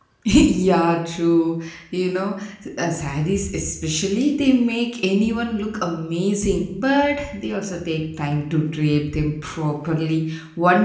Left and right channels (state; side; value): identical; both; correlation 1.00